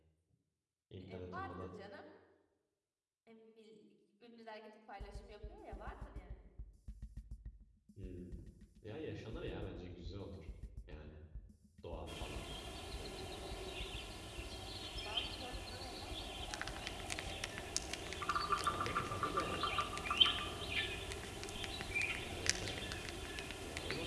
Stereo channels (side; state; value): both; identical; correlation 1.00